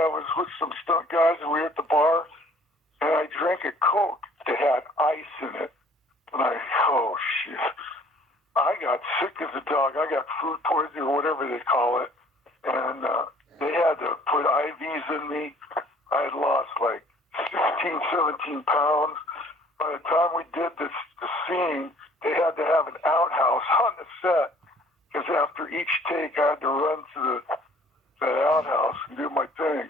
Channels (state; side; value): normal; both; correlation 0.55